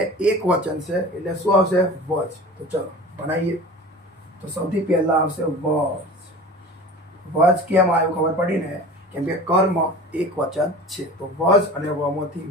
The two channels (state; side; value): normal; both; correlation 0.37